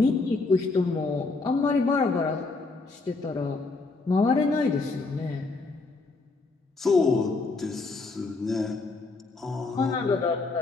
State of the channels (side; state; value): right; quieter; 3.7 dB